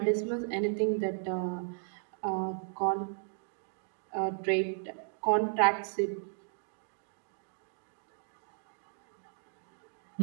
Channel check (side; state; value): left; silent; digital silence